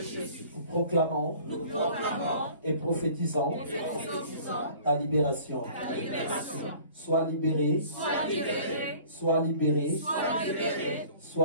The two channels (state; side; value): inverted; both; correlation -0.49